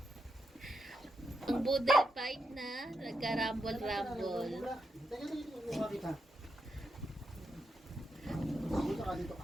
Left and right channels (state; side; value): normal; both; correlation 0.84